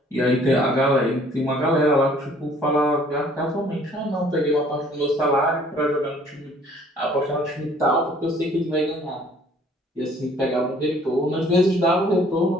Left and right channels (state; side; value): normal; both; correlation 0.57